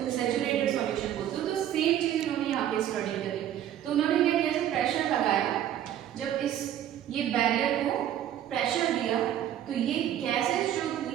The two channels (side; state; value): left; quieter; 11.2 dB